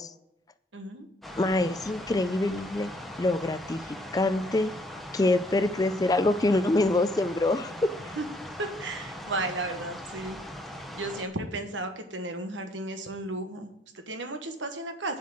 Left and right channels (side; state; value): both; normal; correlation 0.65